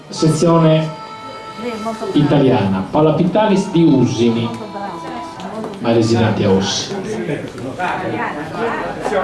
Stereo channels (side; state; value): both; identical; correlation 1.00